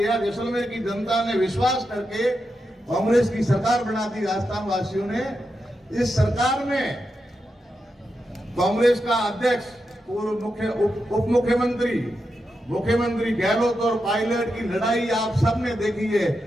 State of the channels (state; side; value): normal; both; correlation 0.87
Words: जैसलमेर की जनता ने विश्वास करके कांग्रेस की सरकार बना दी राजस्थान वासियों ने। इस सरकार में कांग्रेस का अध्यक्ष, पूर्व उप मुख्यमंत्री, मुख्यमंत्री गहलोत और पायलट की लड़ाई आप सबने देखी है।